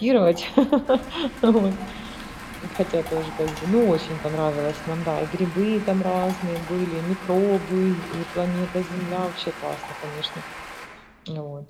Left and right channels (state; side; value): identical; both; correlation 1.00